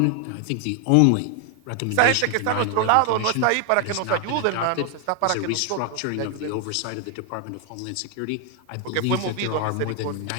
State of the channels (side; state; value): both; different; correlation 0.00